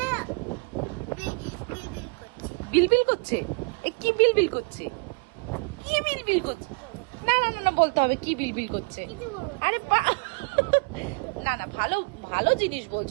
বিলবিল করছে। বিলবিল করছে? এ কি বিলবিল করছে? কি বিলবিল করছে? না না না না, বলতে হবে কি বিলবিল করছে। কিছু বলবো না। আরে না না, ভালো ভালো জিনিস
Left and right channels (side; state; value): left; quieter; 32.8 dB